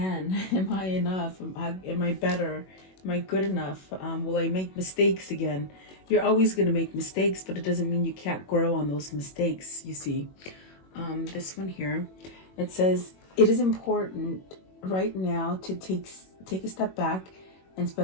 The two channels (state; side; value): late; right; 21 ms